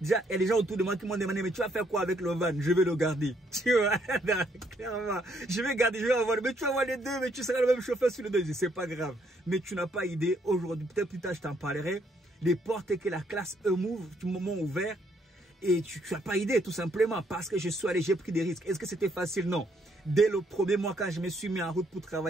il y a des gens autour de moi qui m'ont demandé, mais tu vas faire quoi avec le van? Je vais le garder. Tu vois, clairement, je vais garder, je vais avoir, mais tu vas avoir les deux, mais tu seras le même chauffeur sur les deux. C'est pas grave. Mais tu n'as pas idée, aujourd'hui, peut-être plus tard, je t'en parlerai, les portes que la classe E m'ouvre, du moment ouvert, et tu n'as pas idée, tout simplement, parce que je suis allé, j'ai pris des risques. Est-ce que c'était facile? Non. Dès le premier mois, quand je me suis mis en route pour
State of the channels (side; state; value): both; normal; correlation 0.70